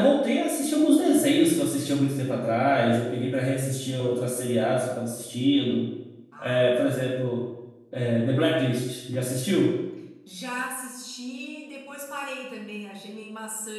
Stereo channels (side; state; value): both; identical; correlation 1.00